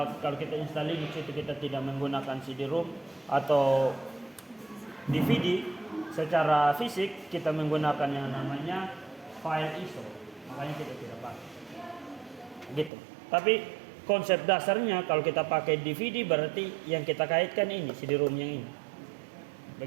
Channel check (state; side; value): drops out; left; at 12.9 s